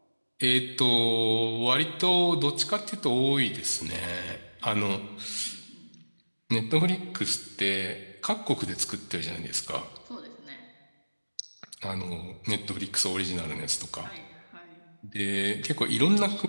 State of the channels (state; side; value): inverted; both; correlation -1.00